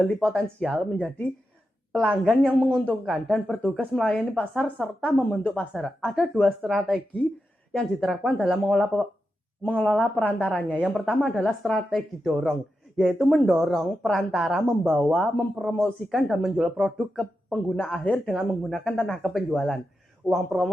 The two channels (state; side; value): normal; both; correlation 0.88